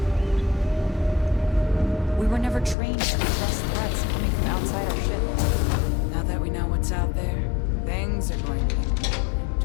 We were never trained to address threats coming from outside our ship. Now that we know what's out there, things are going to be more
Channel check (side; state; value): right; drops out; at 2.8 s